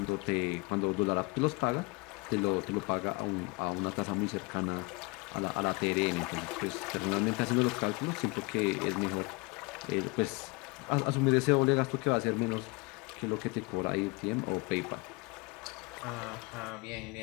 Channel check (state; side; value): quieter; right; 27.4 dB